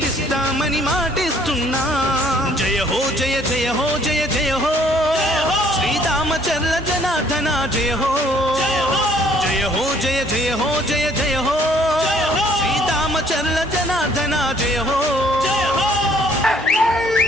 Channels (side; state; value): both; normal; correlation 0.61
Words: మాటిస్తున్నాం. జయ హో జయ జయ హో జయ జయ హో శ్రీరామచంద్ర జనార్దన జయ హో. జయ హో జయ జయ హో జయ జయ హో శ్రీరామచంద్ర జనార్దన జయ హో.